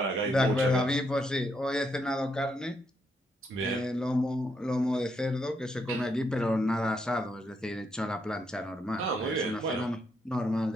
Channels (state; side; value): normal; both; correlation 0.77